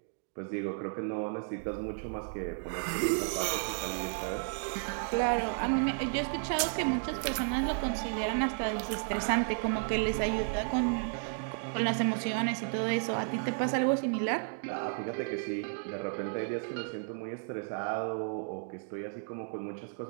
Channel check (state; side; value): silent; left; 56 dB below the other